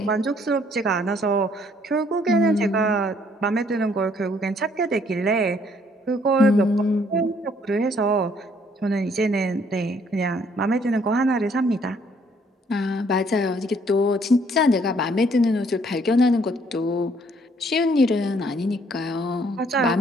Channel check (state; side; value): normal; both; correlation 0.64